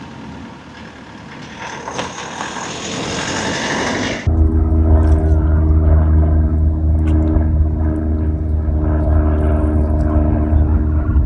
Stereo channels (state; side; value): identical; both; correlation 1.00